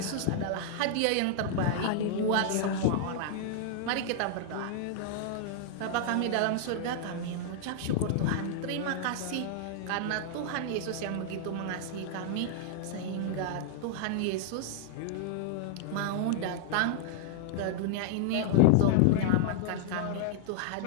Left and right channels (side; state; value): both; different; correlation -0.01